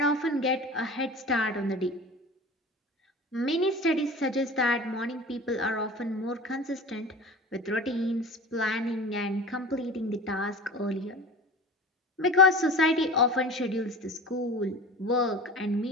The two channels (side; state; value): both; normal; correlation 0.36